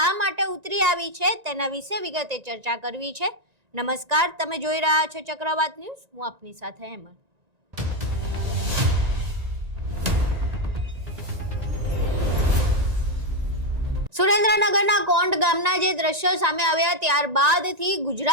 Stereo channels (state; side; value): late; left; 1.9 ms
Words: માટે ઉતરી આવી છે તેના વિશે વિગતે ચર્ચા કરવી છે. નમસ્કાર, તમે જોઈ રહ્યા છો ચક્રવાત ન્યૂઝ. હું આપની સાથે હેમંત. સુરેન્દ્રનગરના કોંડ ગામના જે દ્રશ્યો સામે આવ્યા ત્યારબાદથી